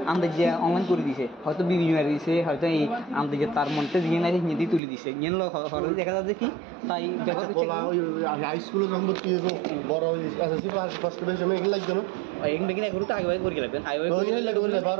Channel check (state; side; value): drops out; left; at 4.8 s